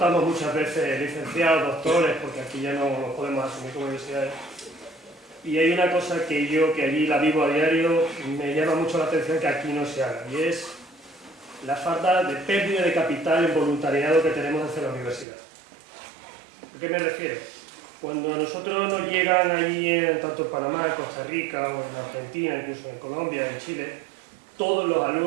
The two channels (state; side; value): drops out; left; at 15.2 s